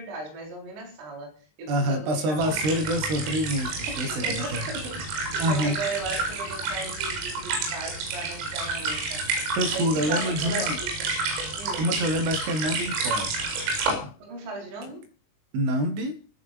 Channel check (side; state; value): left; late; 19 ms